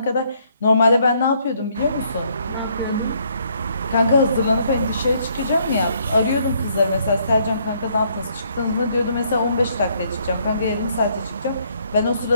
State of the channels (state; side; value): inverted; both; correlation -0.68